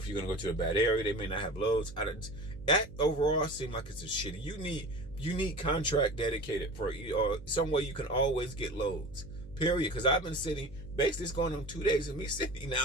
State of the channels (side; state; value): right; noise; hum, 17 dB below the sound